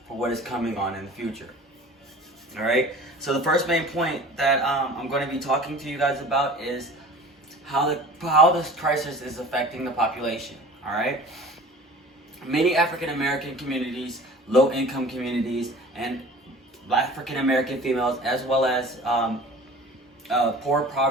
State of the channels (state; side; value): normal; both; correlation 0.43